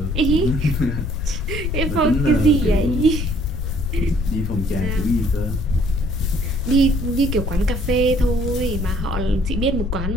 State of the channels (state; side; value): noise; left; rumble, 2 dB below the sound